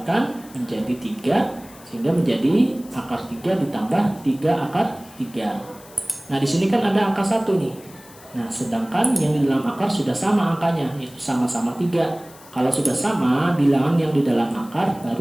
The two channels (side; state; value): left; noise; hiss, 22 dB below the sound